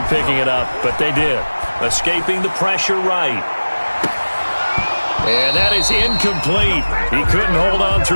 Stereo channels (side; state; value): both; inverted; correlation -1.00